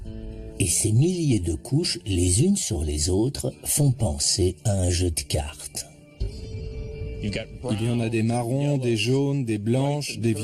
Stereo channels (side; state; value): both; identical; correlation 1.00